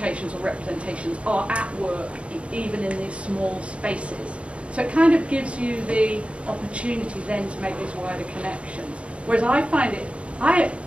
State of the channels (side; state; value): left; late; 0.061 ms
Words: or representations are at work even in these small spaces. So it kind of gives you the opportunity then to make these wider connections. Whereas I find